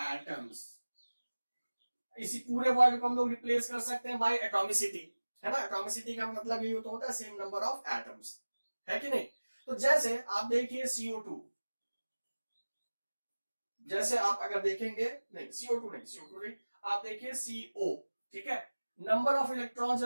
atoms. इसी पूरे वर्ड को हम लोग रिप्लेस कर सकते हैं बाय एटॉमिसिटी, है ना। एटॉमिसिटी का मतलब ये होता है सेम नंबर ऑफ एटम्स, है कि नहीं। तो जैसे आप देखिए CO2, जैसे आप अगर देखेंगे, नहीं CO2 नहीं, आप देखिए CO, ठीक है। नंबर ऑफ इलेक्ट्रॉन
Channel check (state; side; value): inverted; both; correlation -1.00